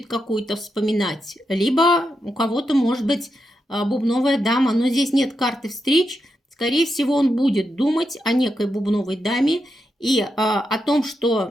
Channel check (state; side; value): normal; both; correlation 0.85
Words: какую-то вспоминать, либо у кого-то может быть бубновая дама, но здесь нет карты встреч. Скорее всего, он будет думать о некой бубновой даме и о том,